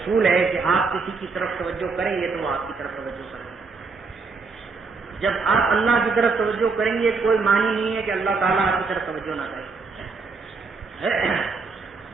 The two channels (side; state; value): left; quieter; 4.4 dB